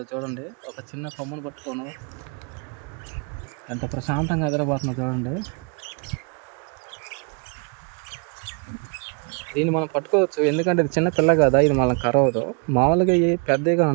చూడండి. ఒక చిన్న కొమ్మను పట్టుకోను ఎంత ప్రశాంతంగా ఎదురబోతుందో చూడండి. దీన్ని మనం పట్టుకోవచ్చు, ఎందుకంటే ఇది చిన్న పిల్ల కదా, ఇది మనం కరవదు. మామూలుగా ఈ పెద్దగా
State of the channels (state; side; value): quieter; left; 37.0 dB